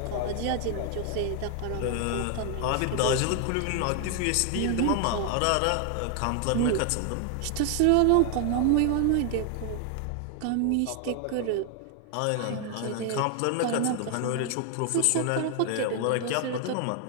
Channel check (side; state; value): both; different; correlation 0.00